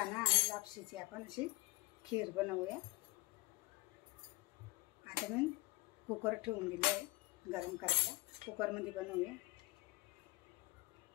आणि लापशीची आपण अशी खीर बनवूया। आता मी कुकर ठेवून दिले आहे गरम करायला। कुकरमध्ये बनवूया।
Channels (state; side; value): quieter; right; 22.2 dB